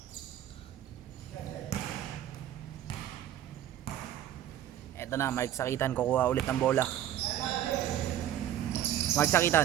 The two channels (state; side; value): quieter; left; 11.6 dB